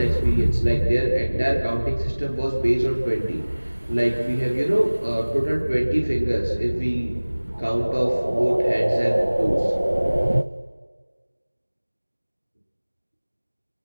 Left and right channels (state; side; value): inverted; both; correlation -1.00